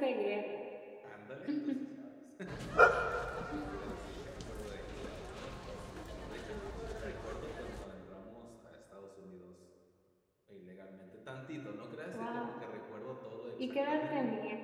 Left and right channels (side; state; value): both; identical; correlation 1.00